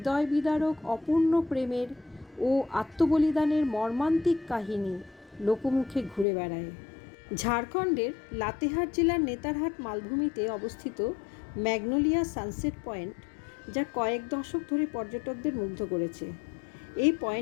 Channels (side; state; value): right; drops out; at 6.2 s